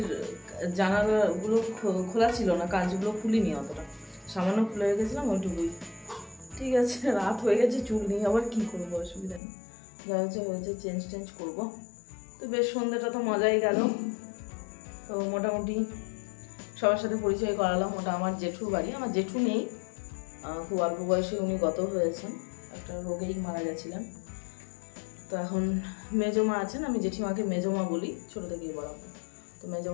জানালাগুলো খোলা ছিল না, কাঁচগুলো খুলিনি, অতটা সামান্য খুলে রেখেছিলাম ওইটুকুই। ঠিক আছে, রাত হয়ে গেছে, চুল নিয়ে আবার কি করবো, অসুবিধা নেই, যা হচ্ছে চেঞ্জ করবো। তো বেশ সন্ধ্যাটা তো মজাই গেল। তো মোটামুটি সবার সাথে পরিচয় করালাম। ওটা আমার জেঠুর বাড়ি। আমার জেঠু নেই, খুব অল্প বয়সে উনি গত হয়েছেন, একটা রোগেই মারা গেছিলেন। তো এখন মেজমা আছেন, আমি জেঠিমাকে মেজমা বলি, ছোটো থেকেই বড়। তো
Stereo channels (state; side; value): drops out; right; at 9.4 s